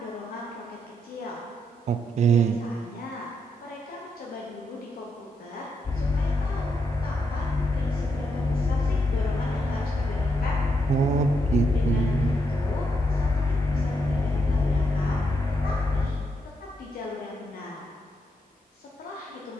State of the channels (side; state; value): both; normal; correlation 0.80